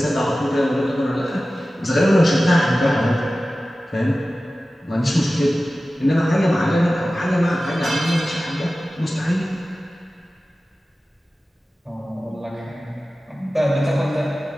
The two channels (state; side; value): normal; both; correlation 0.95